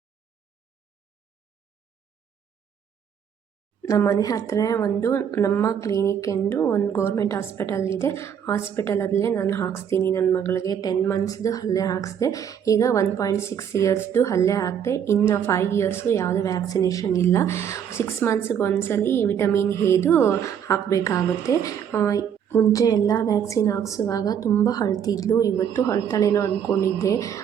ನಮ್ಮ ಮನೆ ಹತ್ರ ನಮ್ಮ ಕ್ಲಿನಿಕ್ ಎಂದು ಒಂದು ಗೌರ್ಮೆಂಟ್ ಹಾಸ್ಪಿಟಲ್ ಇದೆ. ಹಾಸ್ಪಿಟಲಲ್ಲೇ ನಾನು ಹಾಕ್ಸ್ತೀನಿ. ನನ್ನ ಮಗಳಿಗೆ 10 ಮಂತ್ಸ್ದು ಅಲ್ಲೇ ಹಾಕ್ಸಿದೆ. ಈಗ 1.6 ಇಯರ್ಸ್ದು ಅಲ್ಲೇ ಹಾಕಿದೆ. ಇನ್ನು 5 ಇಯರ್ಸ್ಗೂ ಯಾವುದೇ ವ್ಯಾಕ್ಸಿನೇಷನ್ ಇಲ್ಲ. 6 ಮಂತ್ಸ್ಗೆ ಒಂದ್ಸಲಿ ವಿಟಮಿನ್ ಎದು ಹಾಕಬೇಕಾಗುತ್ತೆ. ಮುಂಚೆ ಎಲ್ಲ ವ್ಯಾಕ್ಸಿನ್ ಹಾಕ್ಸುವಾಗ ತುಂಬ ಅಳ್ತಿದ್ಲು. ಇವತ್ತು ಅಳ್ತಾಳೇನೋ ಅಂದ್ಕೊಂಡಿದ್ದೆ,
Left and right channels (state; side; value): quieter; left; 8.4 dB